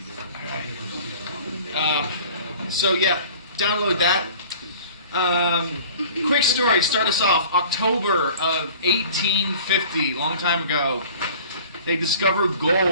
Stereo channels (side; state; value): both; inverted; correlation -0.46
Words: All right. So yeah, download that. Quick story, start us off. October of 1850, long time ago, they discovered